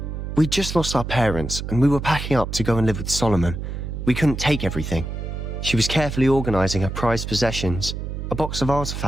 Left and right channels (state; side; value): noise; right; hum, 6 dB below the sound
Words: We'd just lost our parents, and we were packing up to go and live with Solomon. We couldn't take everything. She was carefully organizing her prized possessions, a box of